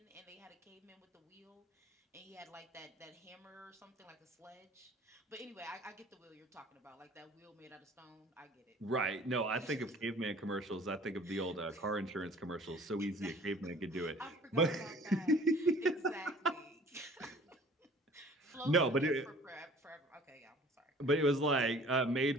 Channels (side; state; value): both; normal; correlation 0.50